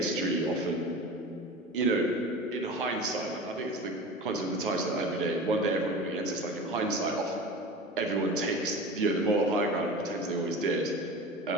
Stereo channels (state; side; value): normal; both; correlation 0.34